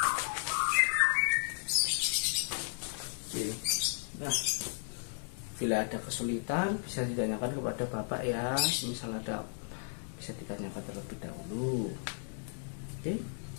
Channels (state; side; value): silent; right; digital silence